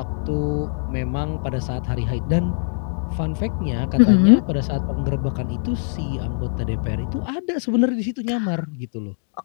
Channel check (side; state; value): right; silent; digital silence